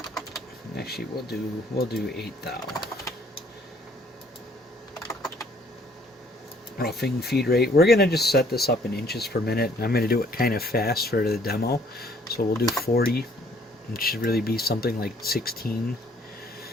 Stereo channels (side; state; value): both; normal; correlation 0.61